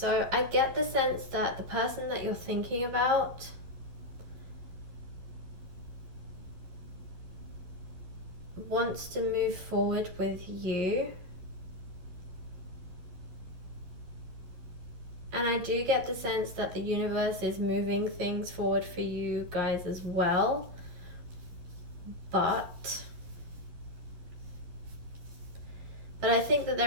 I get the sense that the person that you're thinking about wants to move forward with you, And I do get the sense that the universe is moving things forward for you guys as well. But I think that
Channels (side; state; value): left; late; 11 ms